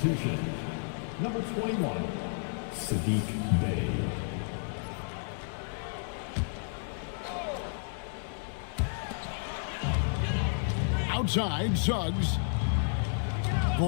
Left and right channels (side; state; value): right; silent; digital silence